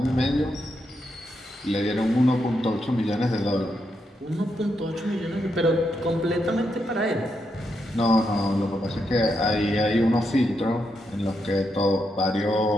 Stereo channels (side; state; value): both; normal; correlation 0.82